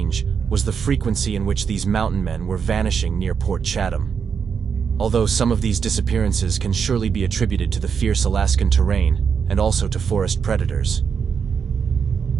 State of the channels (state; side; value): quieter; left; 6.6 dB